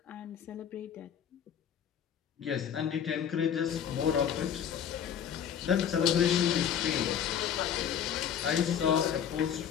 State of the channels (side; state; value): right; quieter; 8.6 dB